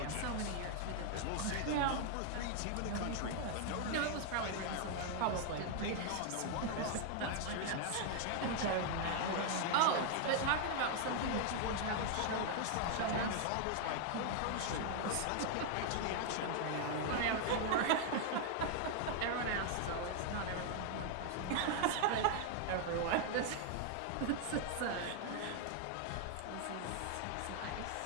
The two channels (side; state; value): both; different; correlation 0.00